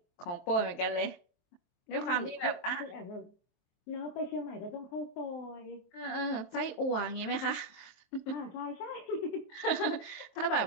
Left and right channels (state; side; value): late; right; 23 ms